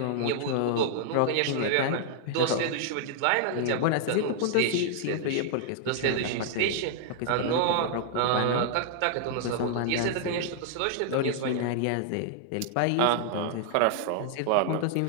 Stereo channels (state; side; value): different; both; correlation -0.01